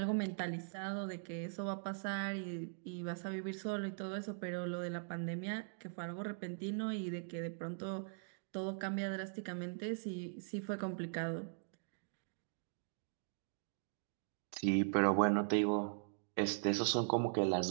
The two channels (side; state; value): left; silent; digital silence